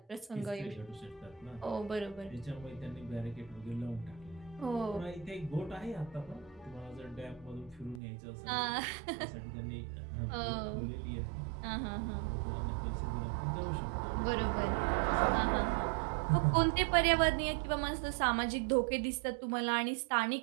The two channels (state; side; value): drops out; left; at 8.0 s